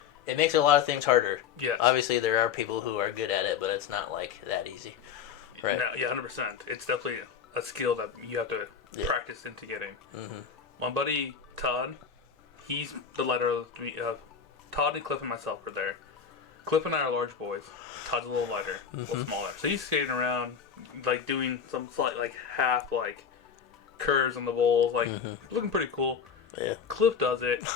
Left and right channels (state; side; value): quieter; right; 7.1 dB